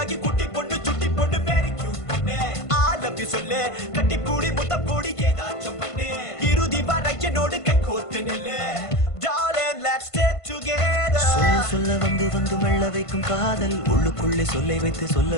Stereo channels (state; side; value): late; right; 1.5 ms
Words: குட்டி பொண்ணு சுட்டி பொண்ணு வெரி கியூட் பொண்ணு. ஆலப்பி சொல்லு கட்டி பூடி முத்தம் பூடி ஏதாச்சும் பண்ணு, இறுதி வரை என்னோடு கை கோத்து நெல்லு. Darling, let's stay together. சொல்ல சொல்ல வந்து வந்து மெல்ல வைக்கும் காதல், உள்ளுக்குள்ளே சொல்லை வைத்து சொல்ல